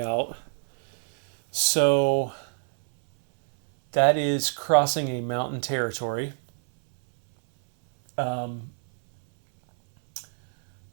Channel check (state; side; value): silent; left; 62 dB below the other